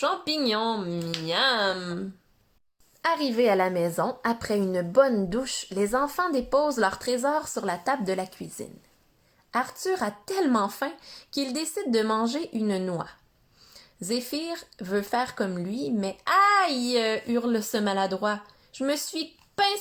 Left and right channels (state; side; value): identical; both; correlation 1.00